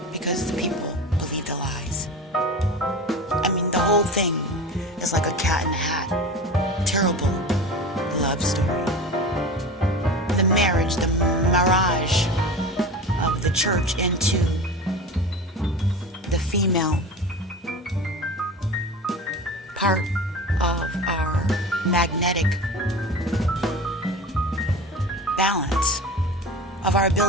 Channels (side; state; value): both; normal; correlation 0.32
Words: because the people believed the lies. I mean, the whole thing is like a cat in a hat. Terrible love story. The marriage, the mirage of the church into the female part of magnetic balance, of our